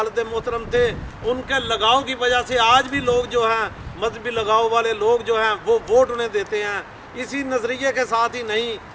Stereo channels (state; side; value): identical; both; correlation 1.00